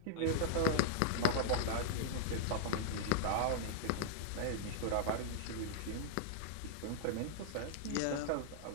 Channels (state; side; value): different; both; correlation -0.01